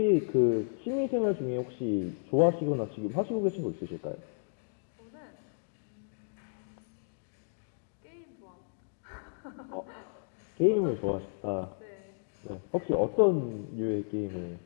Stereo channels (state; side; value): silent; right; digital silence